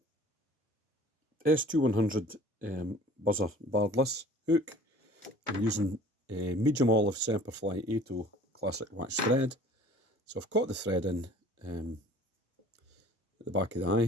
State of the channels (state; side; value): normal; both; correlation 0.48